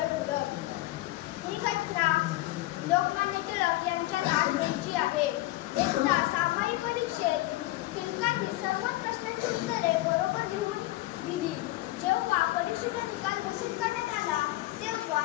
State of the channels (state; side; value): quieter; right; 18.1 dB